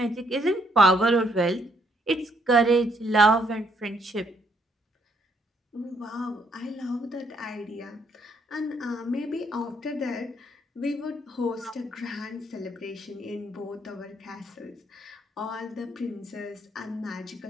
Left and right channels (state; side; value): normal; both; correlation 0.71